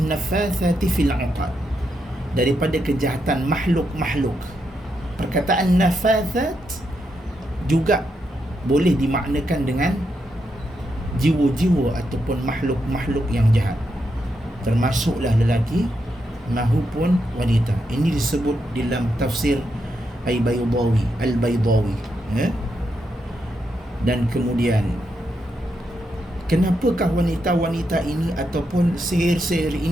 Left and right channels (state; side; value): normal; both; correlation 0.82